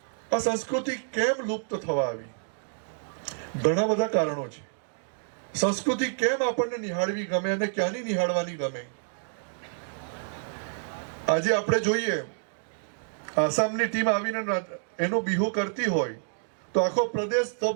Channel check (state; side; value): silent; left; digital silence